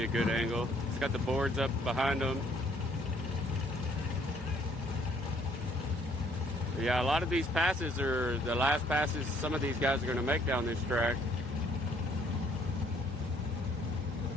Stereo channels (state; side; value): normal; both; correlation 0.64